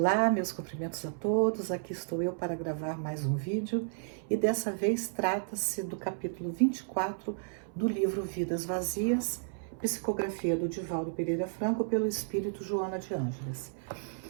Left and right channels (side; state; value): left; silent; 56 dB below the other